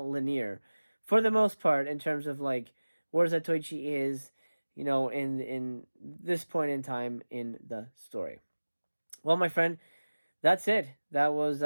linear, for the most part, in terms of, like, where Zatoichi is, you know, in this point in time in the story. Well, my friend, that's it. That was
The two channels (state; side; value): inverted; both; correlation -1.00